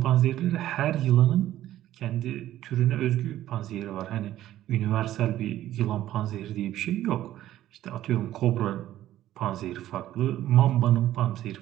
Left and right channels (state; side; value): quieter; left; 13.4 dB